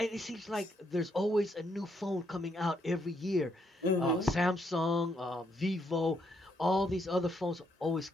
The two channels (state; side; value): normal; both; correlation 0.75